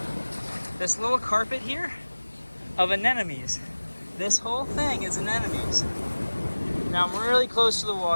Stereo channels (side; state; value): both; inverted; correlation -1.00